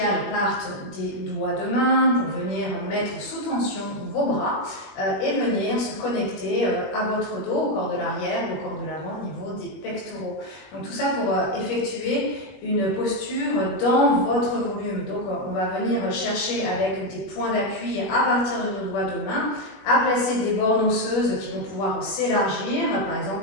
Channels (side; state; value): right; late; 21 ms